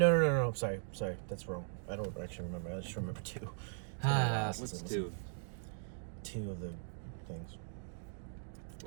Sorry. That's wrong. I don't actually remember. I just remember 2. What's 2? 2 of the things.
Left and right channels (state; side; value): silent; left; digital silence